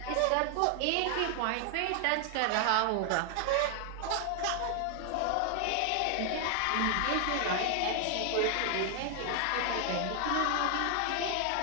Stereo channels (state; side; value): different; both; correlation 0.00